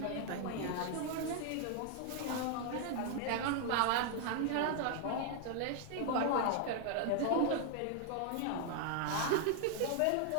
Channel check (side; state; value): both; different; correlation 0.00